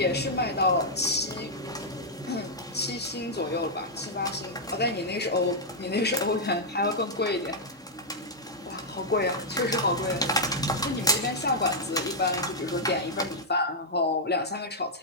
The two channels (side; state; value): both; normal; correlation -0.05